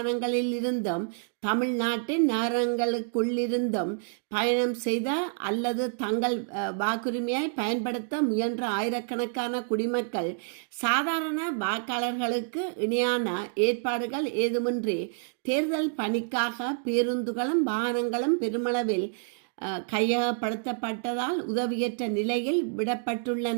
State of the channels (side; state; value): left; silent; 59 dB below the other